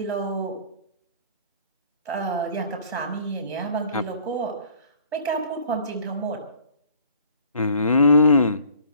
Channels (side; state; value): both; inverted; correlation -0.53